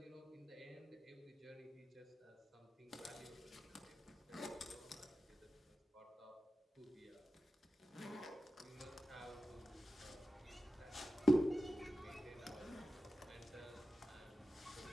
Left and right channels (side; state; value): both; normal; correlation 0.92